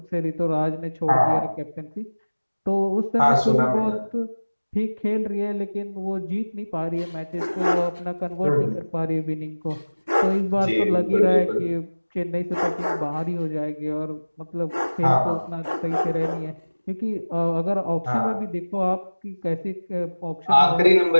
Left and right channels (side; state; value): both; inverted; correlation -1.00